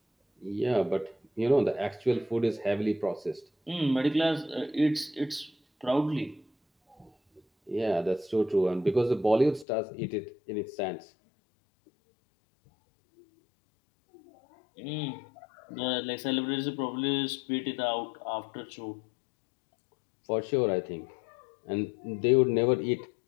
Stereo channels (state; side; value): drops out; right; at 9.7 s